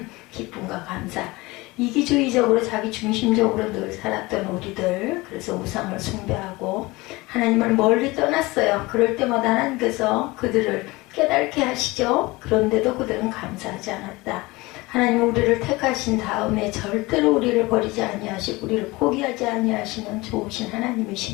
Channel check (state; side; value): quieter; right; 22.1 dB